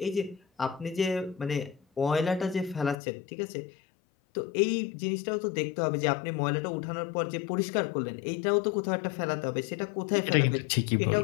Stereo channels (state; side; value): drops out; right; at 3.0 s